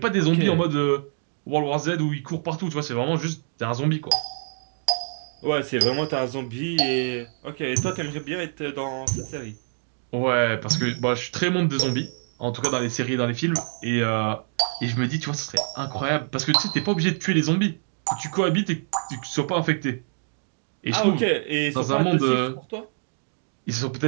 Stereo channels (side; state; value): left; silent; digital silence